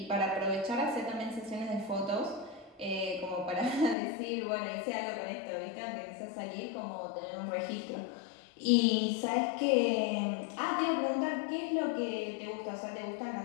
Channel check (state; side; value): drops out; right; at 4.0 s